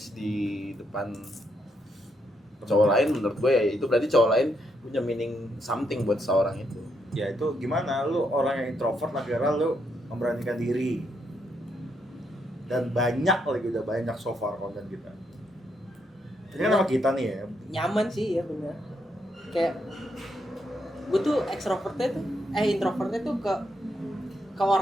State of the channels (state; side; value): normal; both; correlation 0.78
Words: di depan cowok lain, menurut gue ya itu berarti cowok lain punya meaning something buat seorang itu. Ya itu gimana lu orang yang introvert akhirnya lu memberanikan diri. Dan banyak lagi udah banyak so far konten kita. Ini kan sama kita nih ya. Nyaman sih ya bener. Kayak gue tuh introvertnya tuh ke